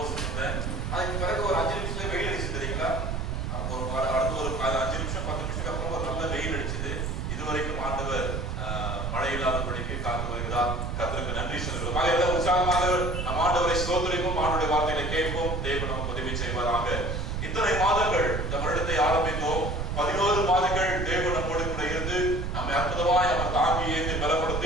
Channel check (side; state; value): right; noise; rumble, 2 dB below the sound